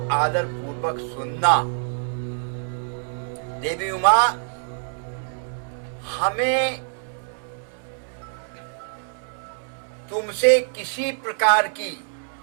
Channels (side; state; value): left; silent; 62 dB below the other